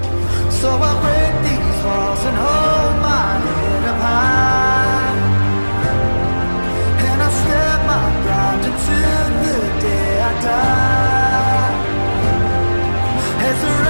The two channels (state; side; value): inverted; both; correlation -1.00